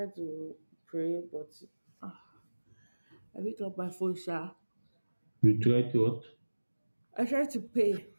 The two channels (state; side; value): inverted; both; correlation -1.00